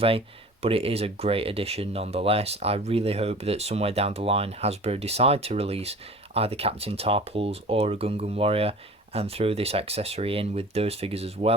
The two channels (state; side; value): normal; both; correlation 0.42